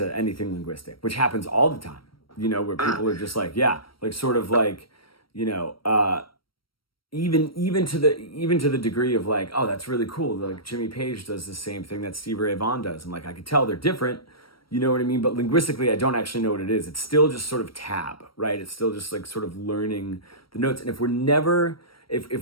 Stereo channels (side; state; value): right; late; 0.74 ms